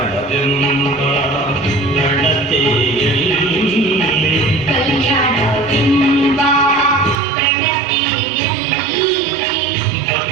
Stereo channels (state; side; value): drops out; left; at 7.2 s